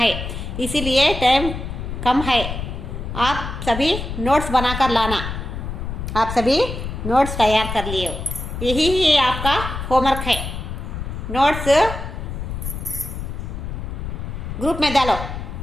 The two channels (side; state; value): left; noise; rumble, 6 dB below the sound